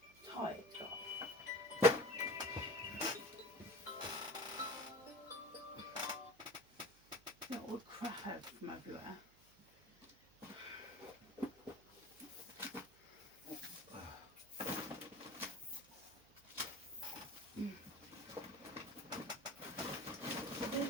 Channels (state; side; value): noise; right; hum, 27 dB below the sound